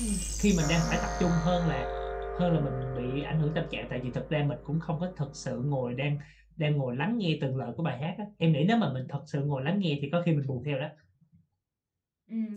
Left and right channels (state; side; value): identical; both; correlation 1.00